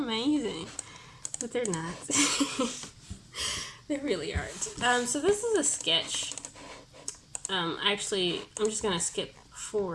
But they're not. They really aren't. So this is a sketch. Actually, I'm just going to skip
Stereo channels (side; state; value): both; identical; correlation 1.00